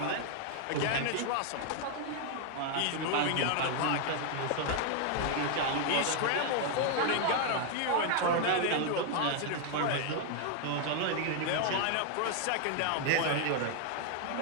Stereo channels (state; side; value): different; both; correlation 0.00